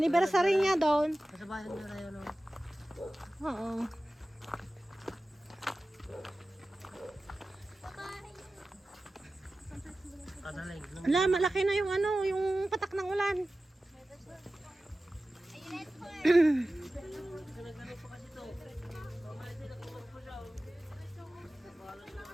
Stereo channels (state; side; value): normal; both; correlation 0.95